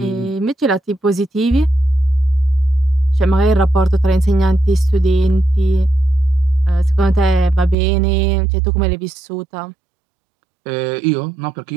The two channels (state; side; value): drops out; left; at 7.8 s